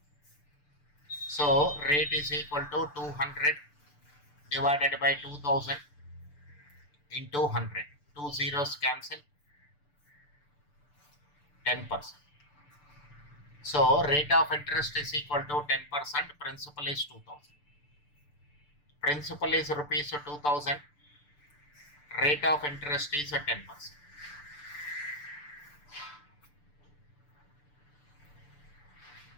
So rate is equal to 200 divided by 2,000 into 100. 2 zeros cancel. 10%. So rate of interest is equal to 10%. Principal is 2,000. Principal is rupees 2,000. Rate of interest is 10%.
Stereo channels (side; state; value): right; late; 6.8 ms